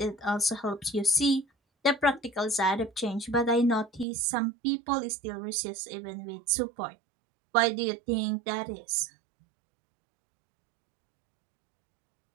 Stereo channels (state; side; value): drops out; left; at 4.0 s